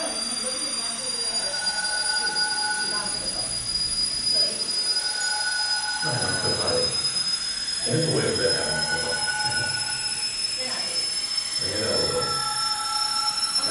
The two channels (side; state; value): both; identical; correlation 1.00